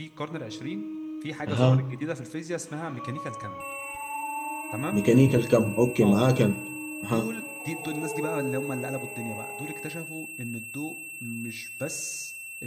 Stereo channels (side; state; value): both; identical; correlation 1.00